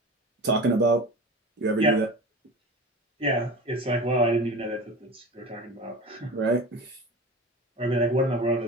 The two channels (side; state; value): both; normal; correlation 0.32